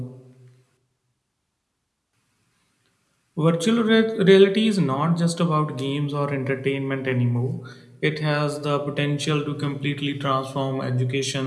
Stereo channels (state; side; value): identical; both; correlation 1.00